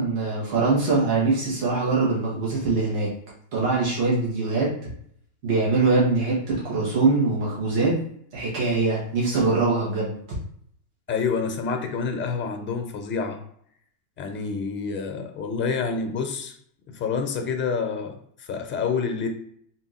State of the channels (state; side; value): late; left; 2.9 ms